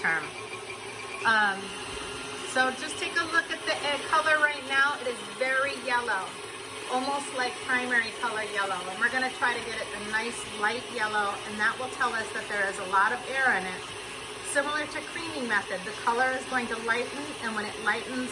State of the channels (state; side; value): identical; both; correlation 1.00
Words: So just take a look at the egg color right now. It is very yellow, almost like primary color yellow. And we're gonna try to get it a nice light yellow, and that will tell us that there is a lot of air in it. Similar to creaming method, the color is going to lighten, and when it lightens,